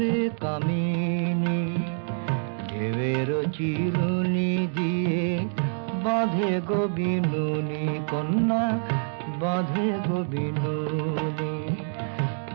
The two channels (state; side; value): silent; left; digital silence